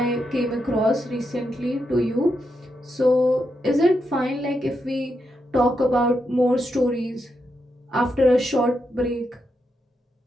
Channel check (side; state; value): both; normal; correlation 0.83